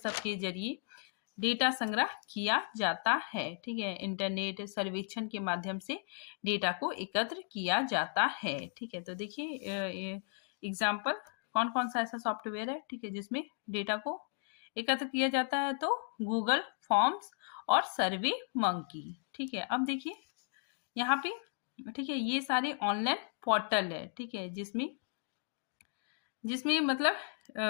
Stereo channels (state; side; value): silent; right; 54 dB below the other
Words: के जरिए डेटा संग्रह किया जाता है। ठीक है, इंटरनेट सर्वेक्षण के माध्यम से डेटा को एकत्र किया जाता है। ठीक है, तो देखिए एग्जाम्पल कौन कौन सा ऐसा सॉफ्टवेयर है, ठीक है, जिसमें डेटा को एकत्र किया जाता है, तो गूगल फॉर्म्स और सर्वे मंकी। ठीक है, अब देखिए यहाँ पे, ठीक है, ये सारे ऑनलाइन पोर्टल है, ठीक है, जिसमें मतलब